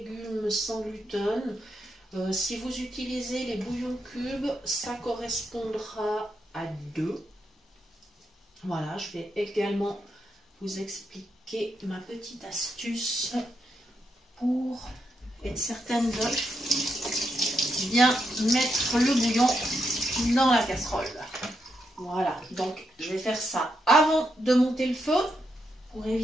sans gluten. Si vous utilisez les bouillons cubes, ça correspondra à 2. Voilà, je vais également vous expliquer ma petite astuce pour être certaine de bien mettre le bouillon dans la casserole. Voilà, donc je vais faire ça avant de monter le feu pour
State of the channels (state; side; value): normal; both; correlation 0.82